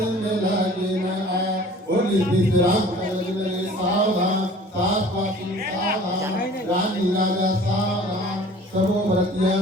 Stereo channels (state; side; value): normal; both; correlation 0.48